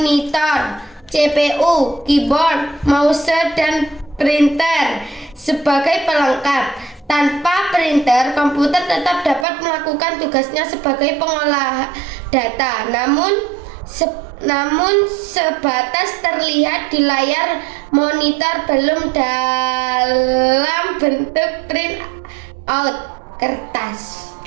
CPU, keyboard, mouse, dan printer sebagai pelengkap. Tanpa printer, komputer tetap dapat melakukan tugasnya sebagai pengolah data, namun sebatas terlihat di layar monitor, belum dalam bentuk print out kertas.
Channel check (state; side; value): drops out; left; at 9.5 s